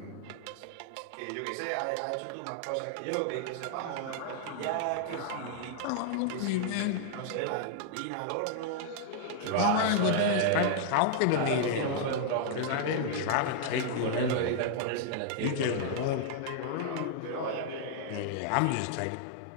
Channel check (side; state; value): both; different; correlation -0.01